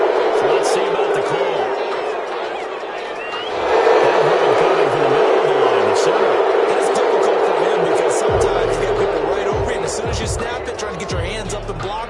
So let's see about the call. That coming from the middle of the line, the center. That's difficult for him because sometimes you get people right over you, and as soon as you snap it, trying to get your hands up and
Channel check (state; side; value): identical; both; correlation 1.00